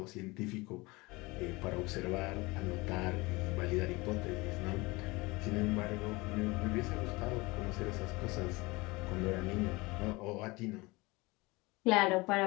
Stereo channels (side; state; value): right; quieter; 23.5 dB